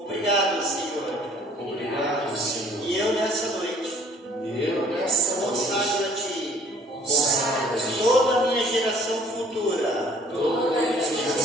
Senhor. Obrigado, Senhor. E eu nessa noite consagro a Ti toda a minha geração futura,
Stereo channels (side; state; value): both; normal; correlation 0.57